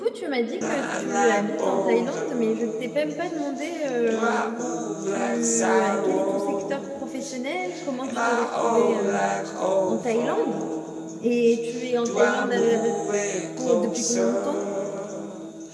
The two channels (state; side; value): identical; both; correlation 1.00